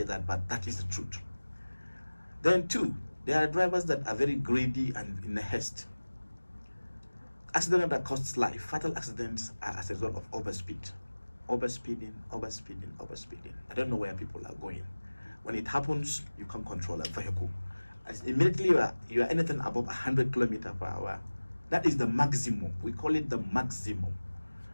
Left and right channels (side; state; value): both; inverted; correlation -1.00